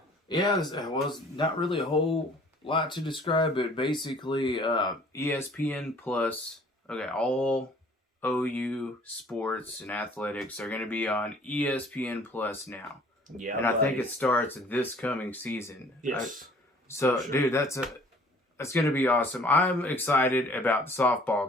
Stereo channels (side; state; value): both; normal; correlation 0.53